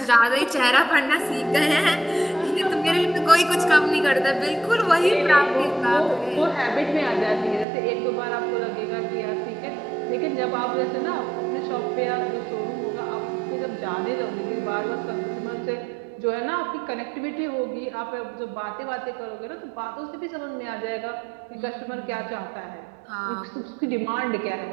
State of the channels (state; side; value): drops out; left; at 7.7 s